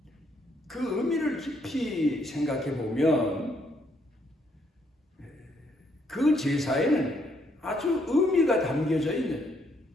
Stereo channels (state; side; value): normal; both; correlation 0.71